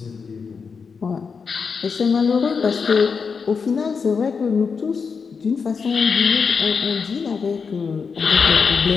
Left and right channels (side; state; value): right; quieter; 5.6 dB